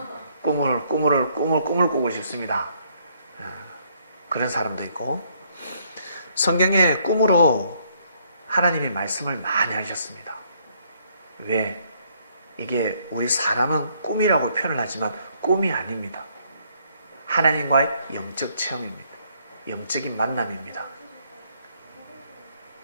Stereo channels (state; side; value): inverted; both; correlation -0.68